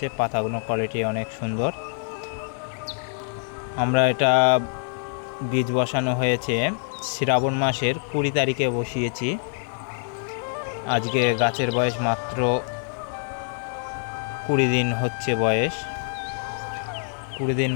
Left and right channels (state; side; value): silent; right; 55 dB below the other